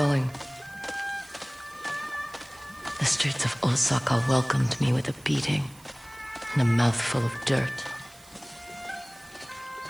The streets of Osaka welcomed me with a beating and a mouthful of dirt.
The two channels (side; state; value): right; noise; hiss, 24 dB below the sound